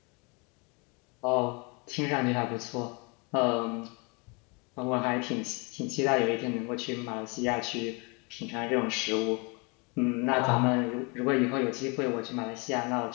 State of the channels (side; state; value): right; quieter; 30.8 dB